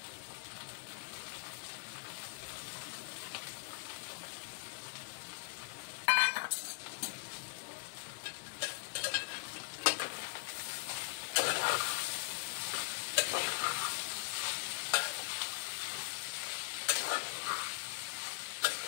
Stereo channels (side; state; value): right; silent; digital silence